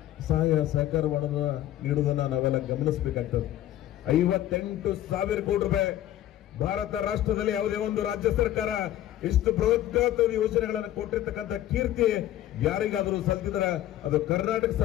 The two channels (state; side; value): quieter; right; 13.0 dB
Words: ಸಹಾಯ ಸಹಕಾರವನ್ನು ನೀಡುವುದನ್ನ ನಾವೆಲ್ಲ ಗಮನಿಸಬೇಕಾಗ್ತದೆ. 58,000 ಕೋಟಿ ರೂಪಾಯಿ ಭಾರತ ರಾಷ್ಟ್ರದಲ್ಲಿ ಯಾವುದೇ ಒಂದು ರಾಜ್ಯ ಸರ್ಕಾರ ಇಷ್ಟು ಬೃಹತ್ ಯೋಜನೆಗಳನ್ನು ಕೊಟ್ಟಿರ್ತಕ್ಕಂಥ ಕೀರ್ತಿ ಯಾರಿಗಾದರೂ ಸಲ್ತಿದ್ರೆ ಅದು ಕರ್ನಾಟಕ